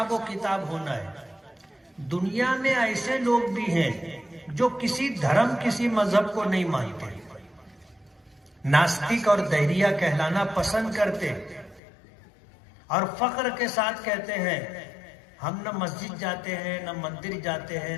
و کتاب ہونا ہے۔ دنیا میں ایسے لوگ بھی ہیں جو کسی دھرم کسی مذہب کو نہیں مانتے، ناستک اور دہریہ کہلانا پسند کرتے، اور فخر کے ساتھ کہتے ہیں ہم نہ مسجد جاتے ہیں، نہ مندر جاتے ہیں،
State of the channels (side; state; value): right; drops out; at 11.8 s